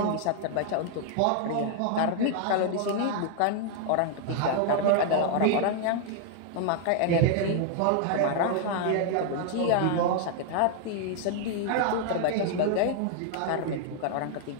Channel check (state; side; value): different; both; correlation 0.00